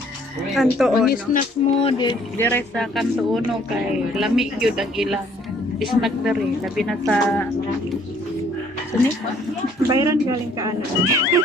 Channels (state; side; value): normal; both; correlation 0.61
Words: Kanto ang ono. snack mo dire sa kanto uno kay lamig yun ang ilang snack dere labi na sa sini Bayran galing ka ano.